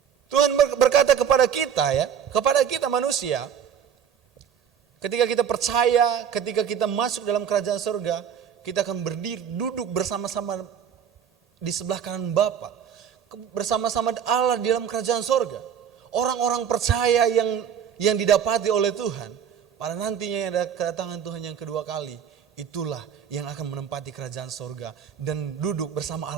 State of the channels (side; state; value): left; quieter; 8.3 dB